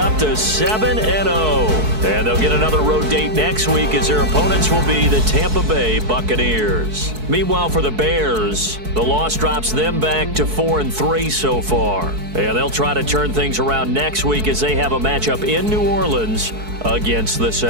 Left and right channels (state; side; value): late; left; 4.6 ms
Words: to 7-0. And they'll get another road date next week as their opponents will be the Tampa Bay Buccaneers. Meanwhile, for the Bears, the loss drops them back to 4-3 so far. And they'll try to turn things around next week as they have a matchup in New Orleans against the